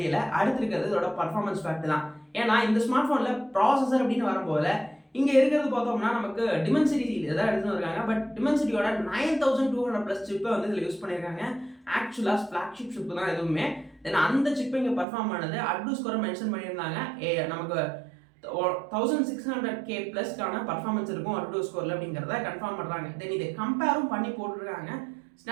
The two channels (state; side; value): drops out; left; at 15.1 s